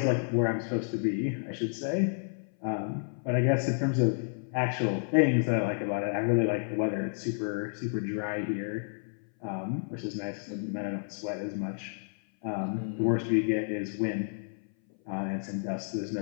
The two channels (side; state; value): right; silent; 57 dB below the other